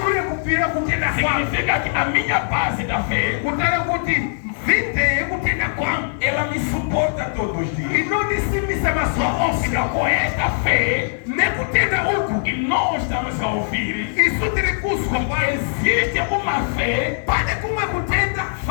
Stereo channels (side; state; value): right; silent; digital silence